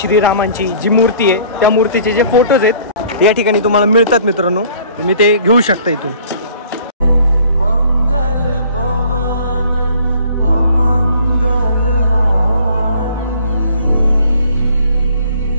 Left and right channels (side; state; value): both; inverted; correlation -0.54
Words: जी मूर्ती आहे त्या मूर्तीचे जे फोटोज आहेत या ठिकाणी तुम्हाला मिळतात मित्रांनो. तुम्ही ते घेऊ शकता इथून.